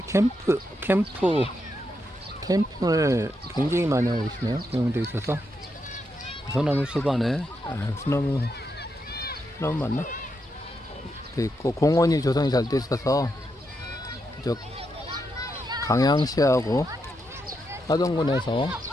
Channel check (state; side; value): normal; both; correlation 0.83